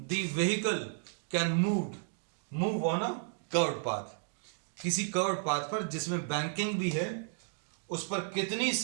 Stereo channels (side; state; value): left; silent; digital silence